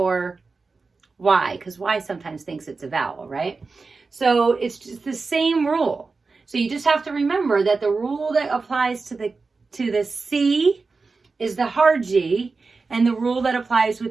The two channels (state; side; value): quieter; left; 4.2 dB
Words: Y, because Y sometimes thinks it's a vowel, right? So it's just the same rule. So you just have to remember that the rule that applies to the C is the hard G, and the rule that applies